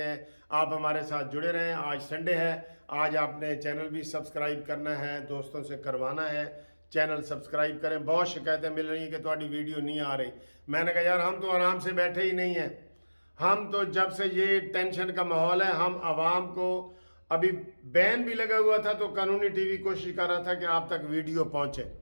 हैं। आप हमारे साथ जुड़े रहें। आज संडे है, आज आपने चैनल भी सब्सक्राइब करना है, दोस्तों से करवाना है, चैनल सब्सक्राइब करें। बहुत शिकायतें मिल रही हैं कि तुम्हारी वीडियो नहीं आ रही। मैंने कहा यार हम तो आराम से बैठे ही नहीं हैं। हम तो जब से ये टेंशन का माहौल है, हम आवाम को, अभी बैन भी लगा हुआ था तो कानूनी टीवी कोशिश कर रहा था कि आप तक वीडियो पहुंचे।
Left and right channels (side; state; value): both; inverted; correlation -1.00